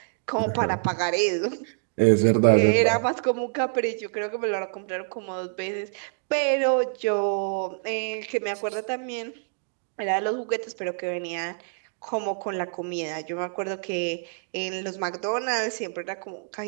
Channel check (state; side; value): silent; left; digital silence